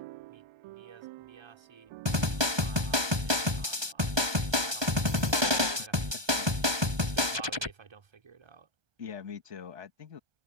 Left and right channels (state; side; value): late; left; 1.2 ms